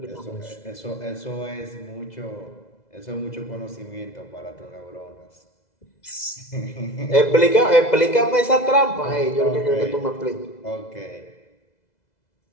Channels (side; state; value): right; late; 2.0 ms